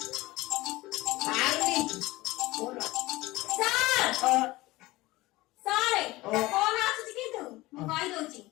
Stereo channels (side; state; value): right; quieter; 19.5 dB